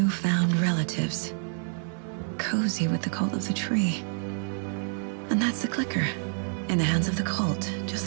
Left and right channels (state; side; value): silent; left; 59 dB below the other